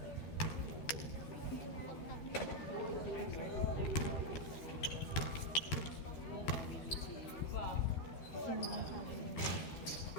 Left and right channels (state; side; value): late; right; 13 ms